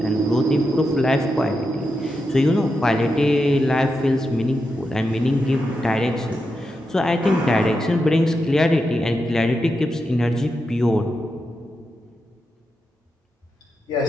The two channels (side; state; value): both; normal; correlation 0.87